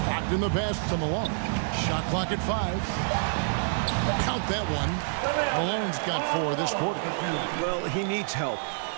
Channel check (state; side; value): silent; left; digital silence